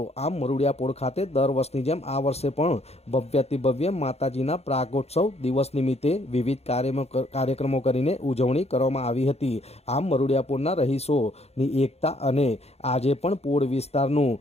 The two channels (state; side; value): late; right; 0.30 ms